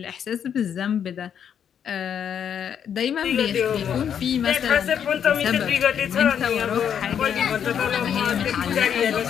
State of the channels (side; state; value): right; quieter; 8.4 dB